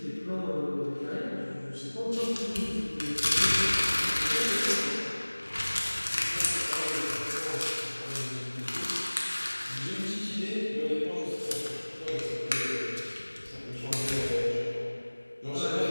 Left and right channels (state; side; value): inverted; both; correlation -1.00